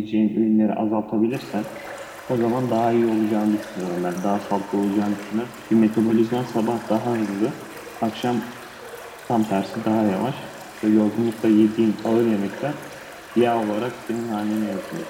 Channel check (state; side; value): identical; both; correlation 1.00